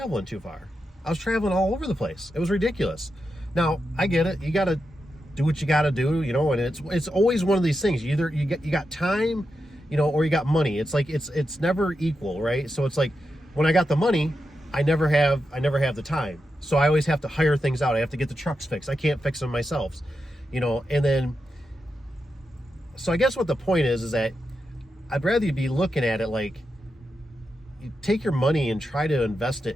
too far. I was traveling all over the place. It was ridiculous. Now, I get it. You got to do what you got to do, and it's always one of these things. You got time, or you got money. It's like it's never equal, right? So it's like when I got the money, I never have the time. So I always have to hire things out. I have to get the trucks fixed. I can't fix them myself, and then so I guess what the point is that I'd rather you be looking at it like you take your money and try to invest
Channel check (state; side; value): normal; both; correlation 0.88